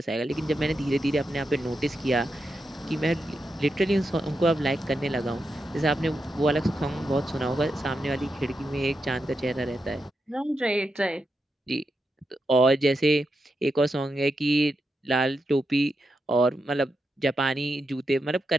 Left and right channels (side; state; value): both; normal; correlation 0.86